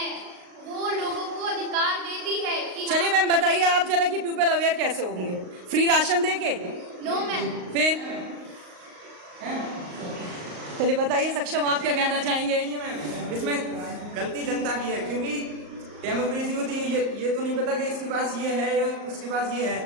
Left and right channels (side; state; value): left; late; 38 ms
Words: वो लोगों को अधिकार देती है कि चलिए मैम बताइए आप जरा कि पीपल अवेयर कैसे होंगे? फ्री राशन दे के? No ma'am. फिर चलिए बताइए सक्षम, आप क्या कहना चाहेंगे? मैम इसमें गलती जनता की है, क्योंकि डेमोक्रेसी होती है ये तो नहीं पता कि इसके पास ये है या उसके पास ये